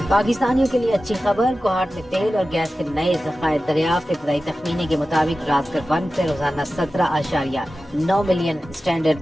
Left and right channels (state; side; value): normal; both; correlation 0.94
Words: پاکستانیوں کے لیے اچھی خبر. کوہاٹ میں تیل اور گیس کے نئے ذخائر دریافت. ابتدائی تخمینے کے مطابق رازکر 1 سے روزانہ 17.9 ملین اسٹینڈرڈ